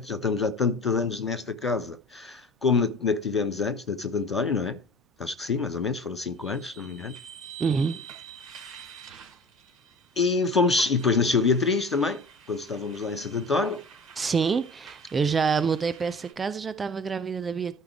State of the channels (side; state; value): both; normal; correlation 0.40